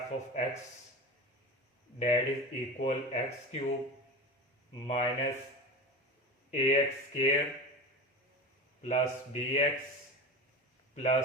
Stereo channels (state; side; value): normal; both; correlation 0.29